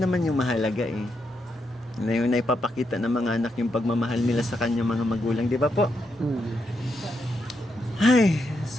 naman yung mahalaga eh. Na yung naipapakita ng mga anak yung pagmamahal nila sa kanyang mga magulang, di ba po? Ay,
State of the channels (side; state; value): both; normal; correlation 0.82